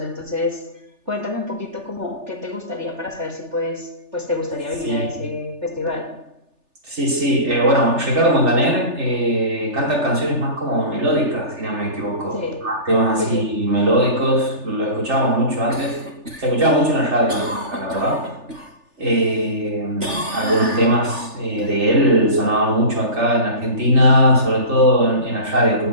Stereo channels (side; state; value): left; late; 3.4 ms